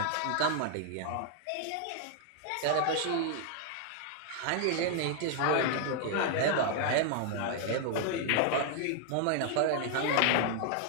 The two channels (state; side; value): different; both; correlation 0.00